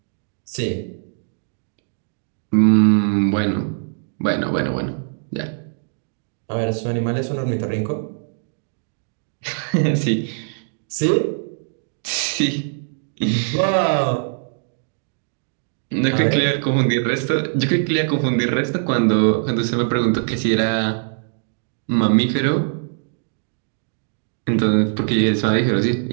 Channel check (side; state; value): left; silent; digital silence